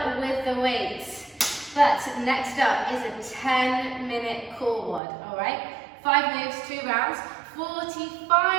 with the weights. But next up is a 10-minute core WOD, all right? 5 moves, 2 rounds,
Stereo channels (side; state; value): left; drops out; at 5.0 s